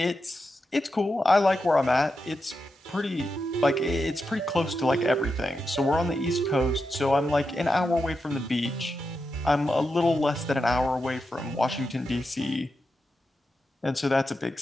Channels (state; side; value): normal; both; correlation 0.88